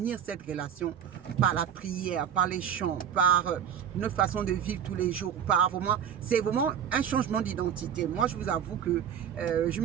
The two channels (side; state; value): left; quieter; 8.8 dB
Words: cette relation par la prière, par les chants, par notre façon de vivre tous les jours, par vraiment, c'est vraiment un changement d'identité. Moi, je vous avoue que je